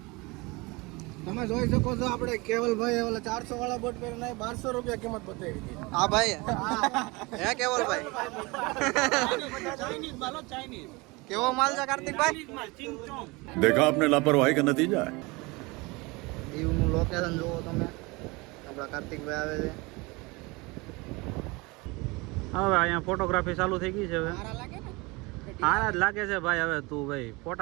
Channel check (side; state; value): left; quieter; 25.2 dB